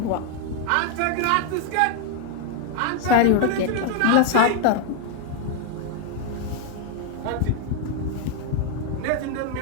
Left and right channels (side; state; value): both; different; correlation 0.00